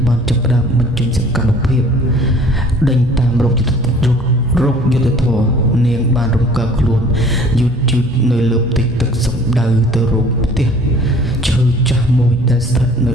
បានចាប់ផ្ដើមបញ្ចេញសកម្មភាពដេញតាមរោគយុទ្ធធម៌នាងបានរំកិលខ្លួនយឺតនៅលើផ្ទៃទឹកសំដៅទៅរកផ្ទះឈើចាស់មួយដែលស្ថិតនៅ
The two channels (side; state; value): both; normal; correlation 0.51